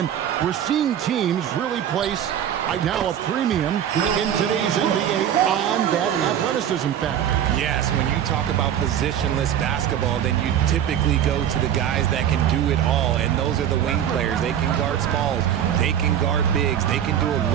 we're seeing teams really place right now a premium in today's NBA on that athleticism factor. Yes, when you talk about positionless basketball, then you typically go to the guys that can do it all, and those are the wing players. They can guard smalls, they can guard bigs, they can do a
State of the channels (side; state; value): left; quieter; 9.8 dB